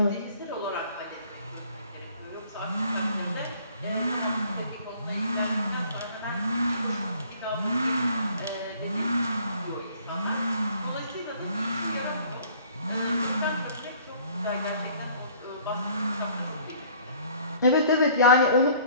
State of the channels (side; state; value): both; inverted; correlation -0.54